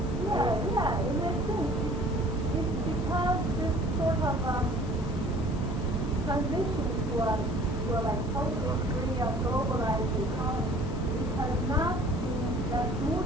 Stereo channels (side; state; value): left; noise; hiss, 22 dB below the sound